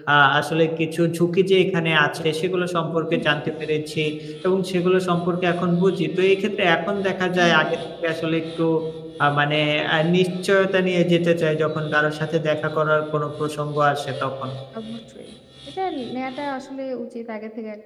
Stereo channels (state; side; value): identical; both; correlation 1.00